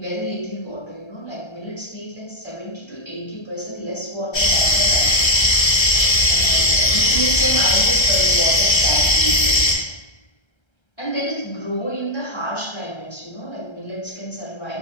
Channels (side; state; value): right; late; 1.3 ms